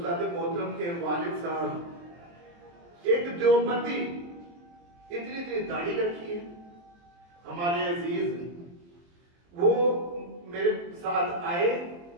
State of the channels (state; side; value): late; left; 23 ms